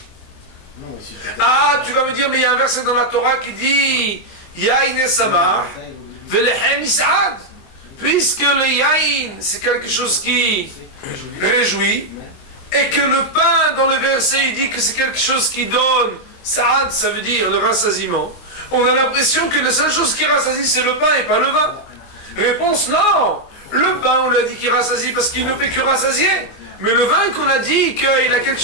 Ah, tu vas me dire, mais il y a un verset dans la Torah qui dit Yain et Samar, Velechem Is'ad. Puisque le Yain, c'est quelque chose qui réjouit, et que le pain, dans le verset, il dit que c'est quelque chose qui donne Sa'ad, ça veut dire le rassasiement. On a l'impression que la seule chose qui rassasie, c'est le pain et pas le vin. Réponse, non. Le pain, on l'a dit qu'il rassasie parce qu'il ne fait que rassasier. Mais le vin qu'on a dit qu'il a quelque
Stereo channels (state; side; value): late; right; 23 ms